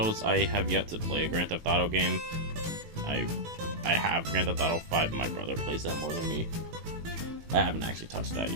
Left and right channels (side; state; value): left; late; 18 ms